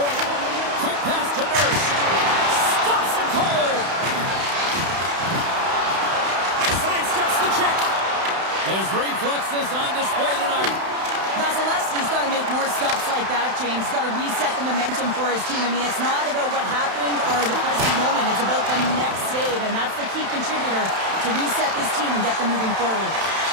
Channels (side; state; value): left; late; 31 ms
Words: Quick pass to Nurse. Stops him cold. Sidesteps the check. His reflexes on display tonight. That's Vasilevsky's got to make more stops like that, James. He's got to reset the momentum for his team. I mean, it's not about what happened or the present moment. It's about the next save, and that's the key contributor to reset this team and get them moving forward.